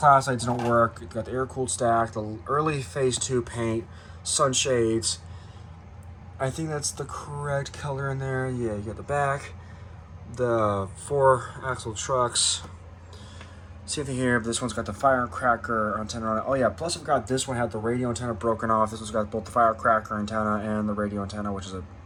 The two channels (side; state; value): both; identical; correlation 1.00